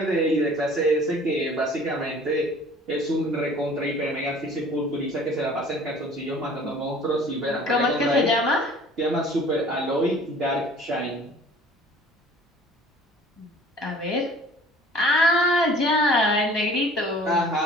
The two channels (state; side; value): normal; both; correlation 0.49